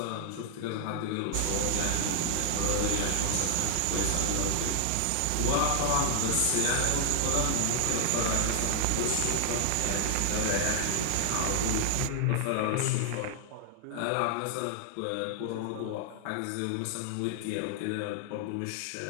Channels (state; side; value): different; both; correlation 0.00